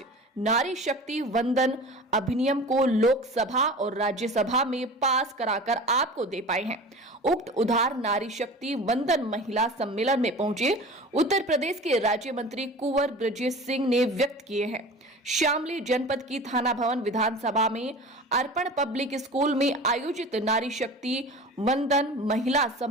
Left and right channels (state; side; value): normal; both; correlation 0.37